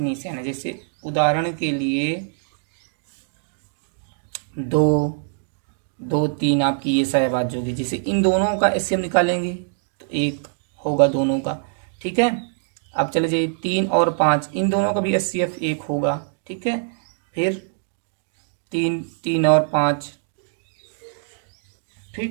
है। जैसे उदाहरण के लिए 2 2 3 आपकी ये सहभाज्य होगी। जैसे इन दोनों का HCF निकालेंगे तो 1 होगा दोनों का, ठीक है। अब चले जाइए 3 और 5, इन दोनों का भी HCF 1 होगा, ठीक है। फिर 3 और 5,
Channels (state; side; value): silent; left; digital silence